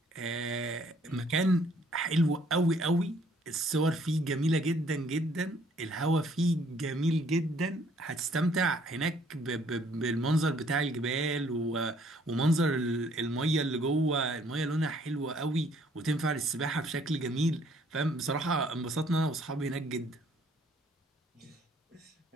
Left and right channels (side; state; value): both; normal; correlation 0.62